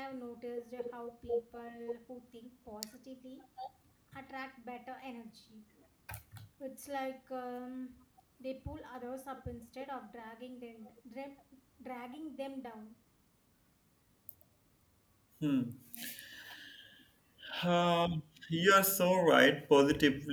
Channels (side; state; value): both; identical; correlation 1.00